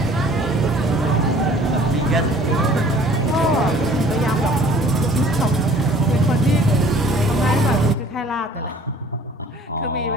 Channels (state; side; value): normal; both; correlation 0.52